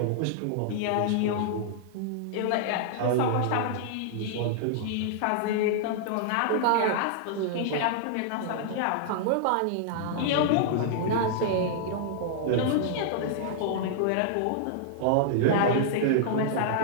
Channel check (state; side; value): different; both; correlation -0.01